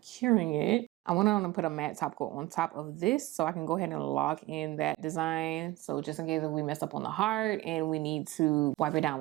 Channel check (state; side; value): quieter; left; 18.5 dB